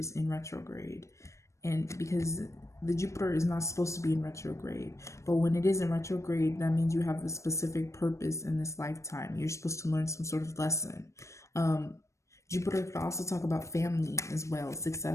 in retrograde. And because the Jupiter is not supposed to be in retrograde, but when it is in retrograde, that means you have a specific purpose in this lifetime. You're supposed to learn some sort of lesson. Jupiter could also talk about family as well,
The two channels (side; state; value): right; late; 0.15 ms